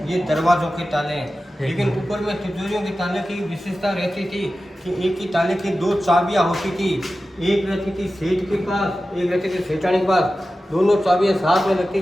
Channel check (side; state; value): both; normal; correlation 0.94